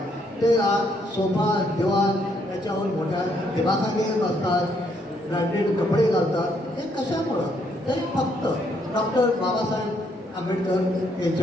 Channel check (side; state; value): both; normal; correlation 0.72